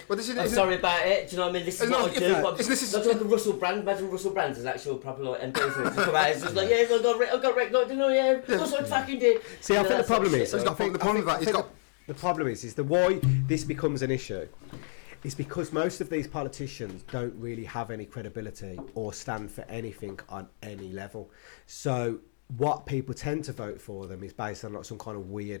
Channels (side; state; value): right; silent; digital silence